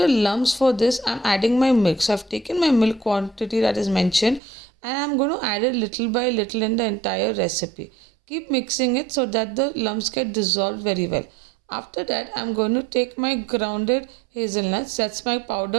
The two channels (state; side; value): drops out; left; at 4.4 s